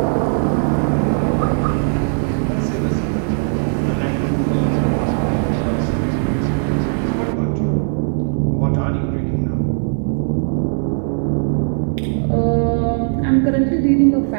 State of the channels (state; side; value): silent; left; 67 dB below the other